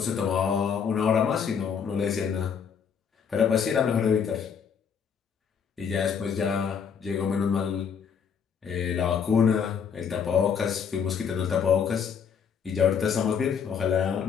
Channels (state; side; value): quieter; right; 7.0 dB